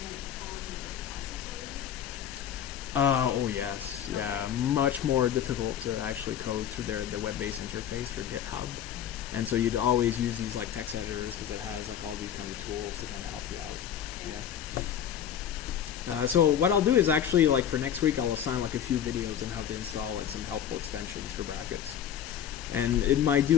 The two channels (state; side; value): quieter; right; 9.5 dB